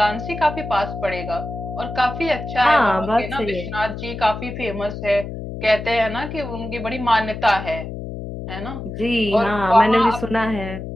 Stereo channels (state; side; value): noise; left; hum, 8 dB below the sound